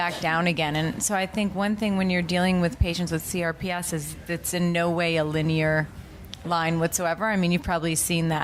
down again. And so I think one thing when you're dealing with patients with CRPS is it's in no way a linear line whatsoever. I mean, you've probably seen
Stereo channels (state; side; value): identical; both; correlation 1.00